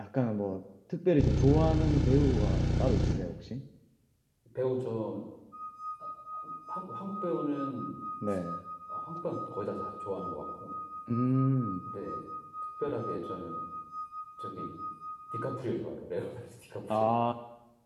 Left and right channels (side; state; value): both; identical; correlation 1.00